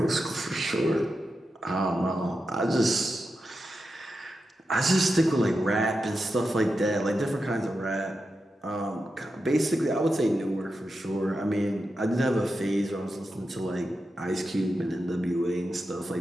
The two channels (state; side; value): normal; both; correlation 0.89